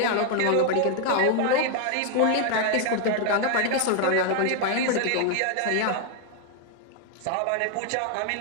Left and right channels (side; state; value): both; different; correlation 0.00